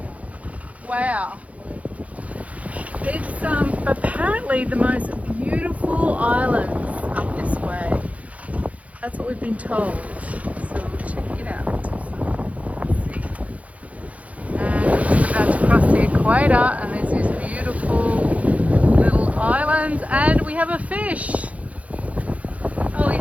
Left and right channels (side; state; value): left; late; 0.067 ms